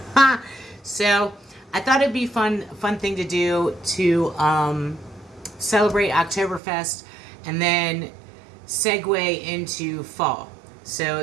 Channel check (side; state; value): left; drops out; at 6.6 s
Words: So I thought it'd be fun thing to do to celebrate Oktoberfest and then segue into fall. So